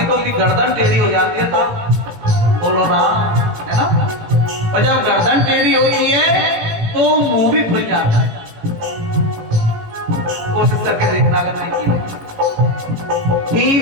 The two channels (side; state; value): left; late; 18 ms